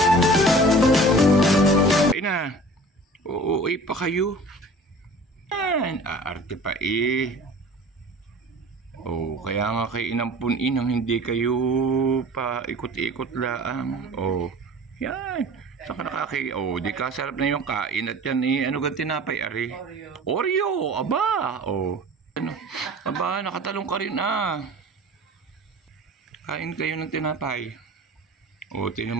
Ay na, uuwi pa kayo. Aarte pa eh. Oh, kaya nga kay inampunin hindi kayo pa ikot-ikot lang. Oh, yan. Saka nakakay, oh, di ka sarap na yung kain at yan eh. Ano gan tinapay, ari? Oreo, aba. Oh, ano? Aba, nakatalong ka rin ah. Kain kayo ng tinapay. Oh,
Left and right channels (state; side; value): normal; both; correlation 0.43